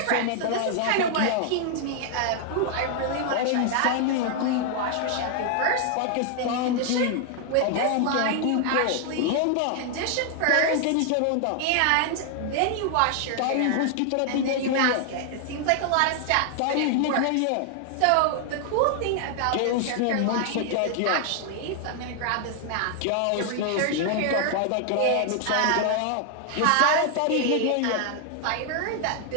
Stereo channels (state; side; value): different; both; correlation 0.00